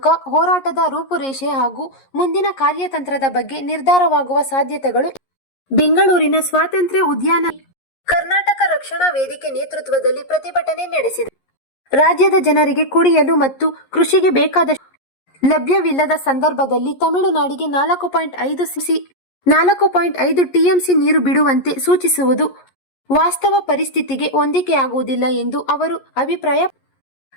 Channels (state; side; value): late; right; 11 ms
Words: ಹೋರಾಟದ ರೂಪುರೇಷೆ ಹಾಗೂ ಮುಂದಿನ ಕಾರ್ಯತಂತ್ರದ ಬಗ್ಗೆ ನಿರ್ಧಾರವಾಗುವ ಸಾಧ್ಯತೆಗಳು. ಬೆಂಗಳೂರಿನ ಸ್ವಾತಂತ್ರ್ಯ ಉದ್ಯಾನ ಕರ್ನಾಟಕ ರಕ್ಷಣಾ ವೇದಿಕೆ ನೇತೃತ್ವದಲ್ಲಿ ಪ್ರತಿಭಟನೆ ನಡೆಸಿದೆ. ರಾಜ್ಯದ ಜನರಿಗೆ ಕುಡಿಯಲು ಮತ್ತು ಕೃಷಿಗೆ ಬೇಕಾದ ಲಭ್ಯವಿಲ್ಲದ ಸಂದರ್ಭದಲ್ಲಿ ತಮಿಳುನಾಡಿಗೆ 4.5 ಟಿಎಂಸಿ ನೀರು ಬಿಡುವಂತೆ ಸೂಚಿಸುವುದು ವಾಸ್ತವ ಪರಿಸ್ಥಿತಿಗೆ ಹೊಂದಿಕೆಯಾಗುವುದಿಲ್ಲ ಎಂದು ಅವರು ಅಭಿಪ್ರಾಯ.